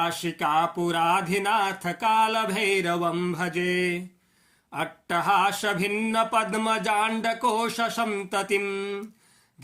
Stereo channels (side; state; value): both; identical; correlation 1.00